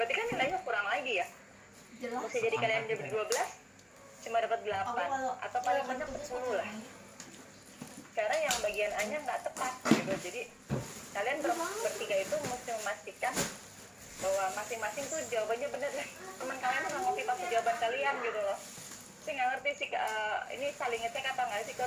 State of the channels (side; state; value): both; identical; correlation 1.00